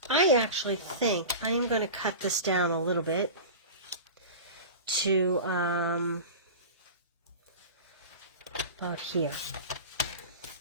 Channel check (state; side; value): inverted; both; correlation -0.31